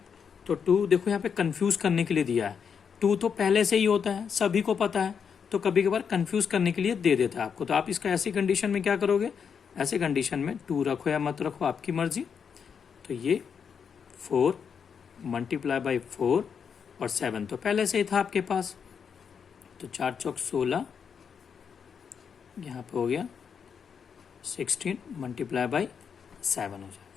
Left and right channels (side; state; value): right; quieter; 6.8 dB